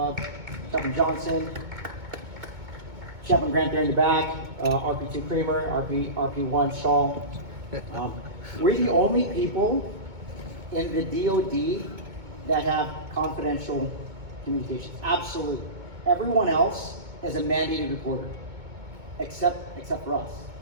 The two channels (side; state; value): left; late; 2.2 ms